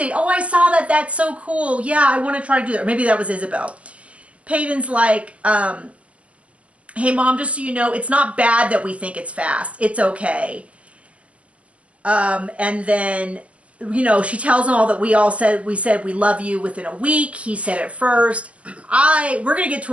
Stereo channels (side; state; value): left; late; 0.063 ms